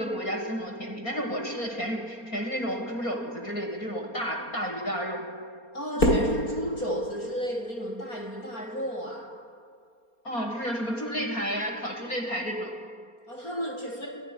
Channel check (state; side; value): late; right; 4.3 ms